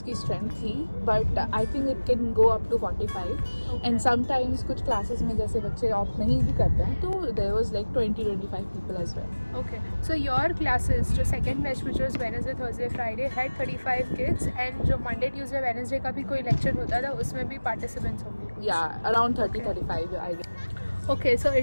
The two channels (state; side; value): inverted; both; correlation -1.00